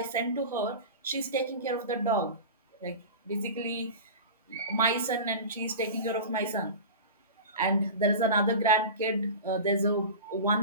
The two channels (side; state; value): both; inverted; correlation -0.31